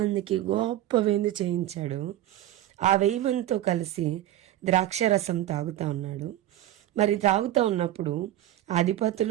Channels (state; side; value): quieter; left; 13.5 dB